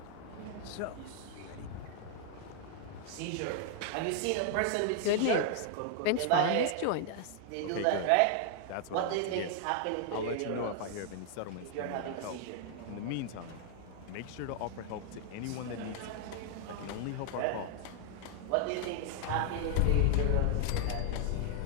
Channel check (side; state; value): both; different; correlation 0.00